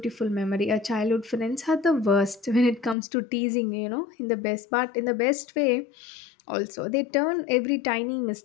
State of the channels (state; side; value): drops out; right; at 3.0 s